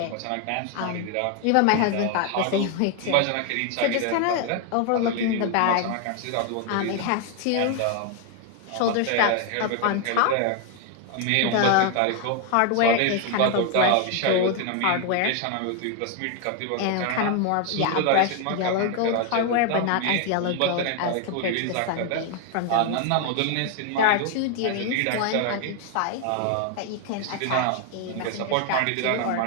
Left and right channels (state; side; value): different; both; correlation 0.00